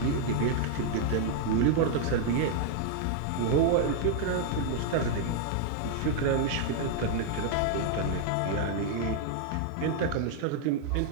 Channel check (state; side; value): different; both; correlation 0.00